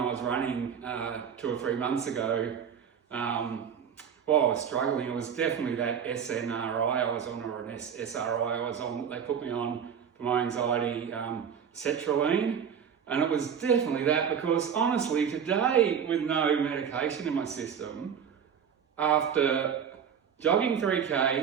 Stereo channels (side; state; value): left; quieter; 7.7 dB